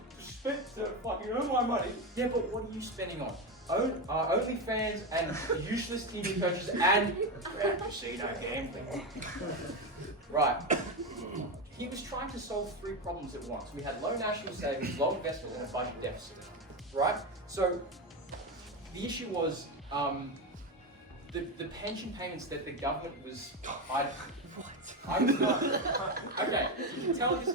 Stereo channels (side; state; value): both; normal; correlation 0.14